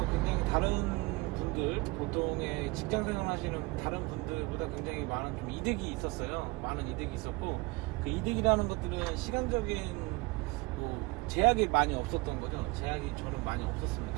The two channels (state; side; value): quieter; left; 24.6 dB